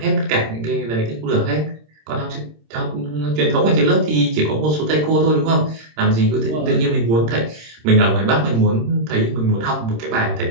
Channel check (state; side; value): late; left; 26 ms